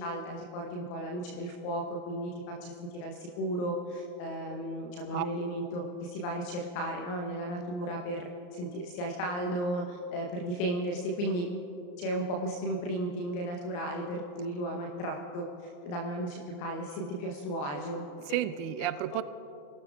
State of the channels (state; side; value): late; right; 34 ms